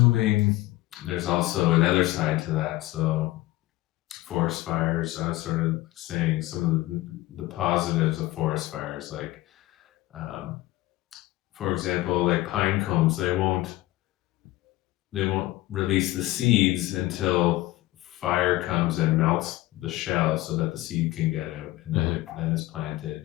there's also another side to that. So forest fires, I was sort of saying some of the positives of forest fires, like for example, like pine cones, they won't release the seeds until fire comes and melts the shell so that the seed can get out, and then then it's planted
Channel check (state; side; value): quieter; right; 17.6 dB